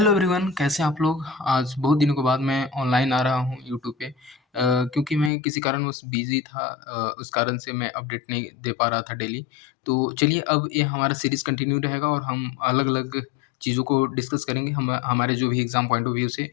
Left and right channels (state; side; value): drops out; right; at 5.3 s